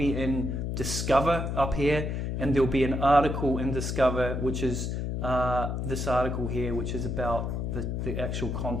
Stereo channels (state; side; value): noise; left; hum, 2 dB below the sound